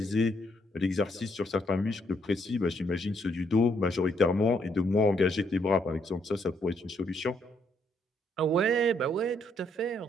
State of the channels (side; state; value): both; normal; correlation 0.72